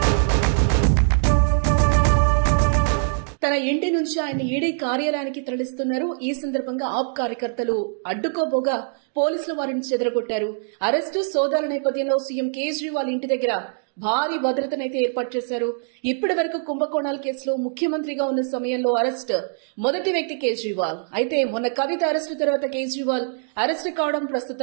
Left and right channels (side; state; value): left; silent; digital silence